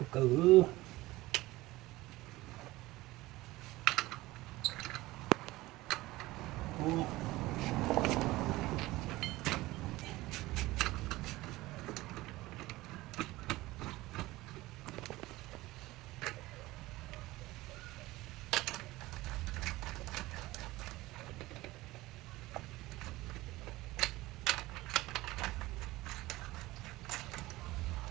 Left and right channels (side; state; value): left; quieter; 18.9 dB